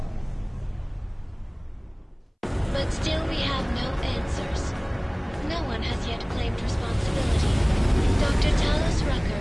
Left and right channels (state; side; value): identical; both; correlation 1.00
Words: But still we have no answers. No one has yet claimed responsibility. Dr. Talos